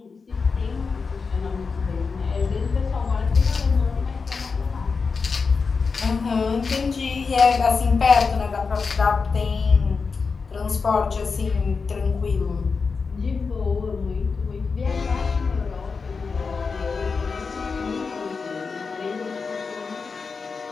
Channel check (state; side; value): quieter; right; 4.9 dB